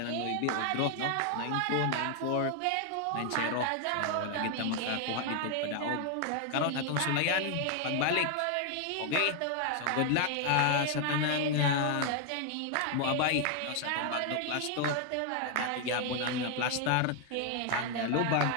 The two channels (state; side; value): different; both; correlation 0.00